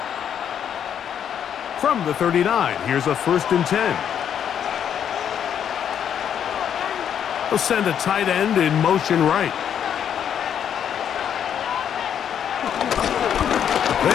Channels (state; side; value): quieter; right; 8.8 dB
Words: From the 39, here's a 1st and 10. They'll send a tight end in motion right.